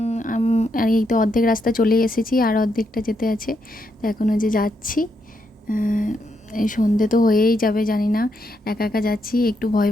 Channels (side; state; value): both; normal; correlation 0.80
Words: আর এই তো অর্ধেক রাস্তা চলে এসেছি, আর অর্ধেকটা যেতে আছে। তো এখনও যে যাচ্ছি, এই সন্ধে তো হয়েই যাবে, জানি না। একা একা যাচ্ছি, একটু ভয়